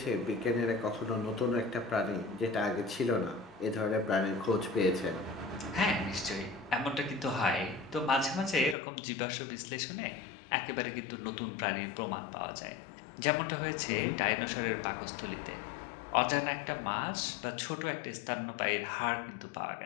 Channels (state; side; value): drops out; right; at 8.8 s